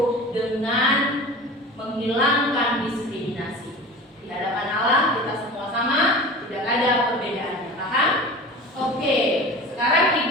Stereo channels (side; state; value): both; normal; correlation 0.36